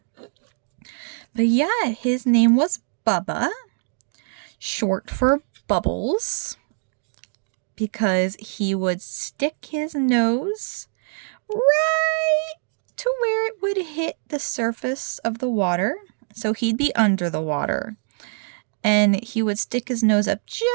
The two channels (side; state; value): left; silent; digital silence